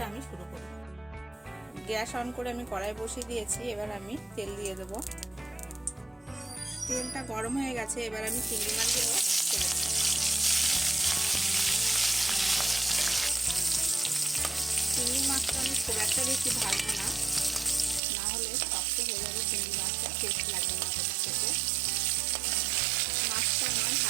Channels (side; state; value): left; drops out; at 18.0 s